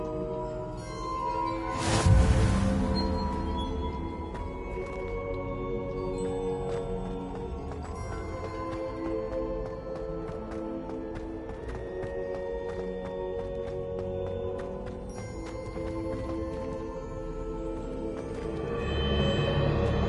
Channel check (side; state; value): both; identical; correlation 1.00